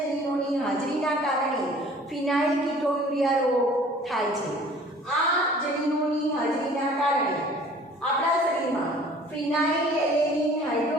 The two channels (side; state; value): both; normal; correlation 0.50